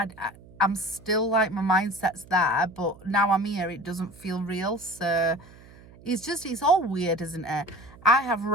I'm still like, my mindset's there, but now I'm here, it doesn't feel real. So It's all weird, isn't it? I have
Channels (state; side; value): noise; right; hum, 22 dB below the sound